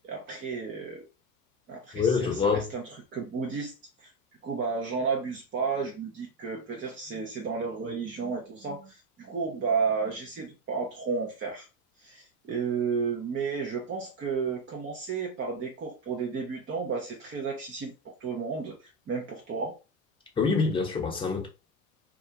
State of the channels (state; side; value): normal; both; correlation 0.10